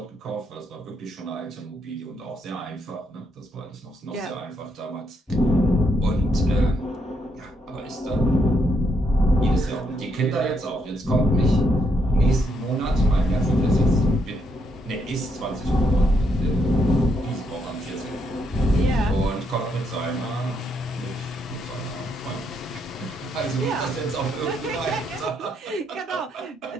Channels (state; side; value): normal; both; correlation 0.76